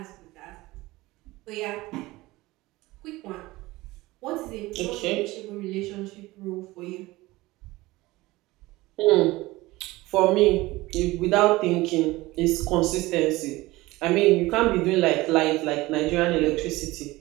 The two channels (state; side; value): quieter; left; 19.7 dB